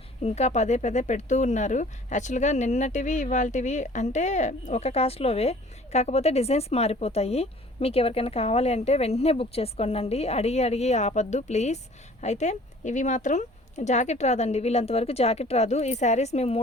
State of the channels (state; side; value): normal; both; correlation 0.50